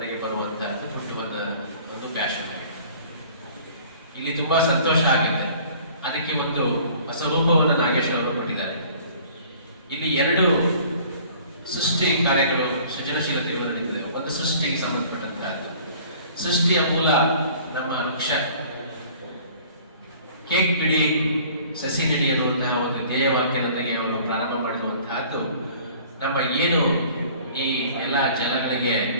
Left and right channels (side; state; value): both; inverted; correlation -0.51